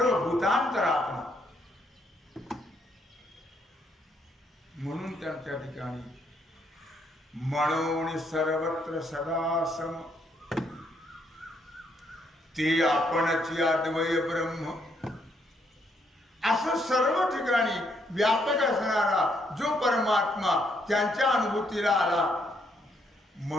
म्हणून त्यांच्या ठिकाणी म्हणून सर्वत्र सदा सम, ते आपणची अद्वय ब्रह्म. असं सर्व ठिकाणी व्यापक असणारा जो परमात्मा त्यांच्या अनुभूतीला आला,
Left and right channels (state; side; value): normal; both; correlation 0.73